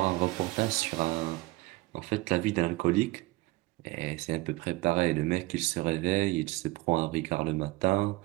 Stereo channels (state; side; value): quieter; left; 20.9 dB